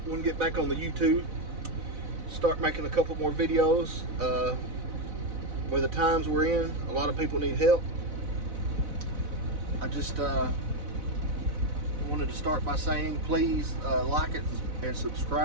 to get back on the YouTube, start making a couple more videos. With the times we're in, a lot of people need help. I just wanted to start by saying please like it and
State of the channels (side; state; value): left; late; 4.0 ms